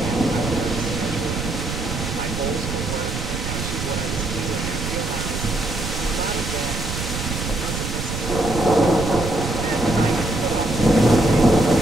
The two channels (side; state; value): right; noise; rumble, 5 dB below the sound